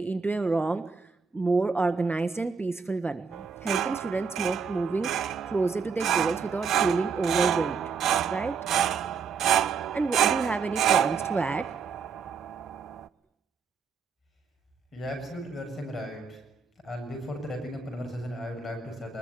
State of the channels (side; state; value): left; quieter; 5.6 dB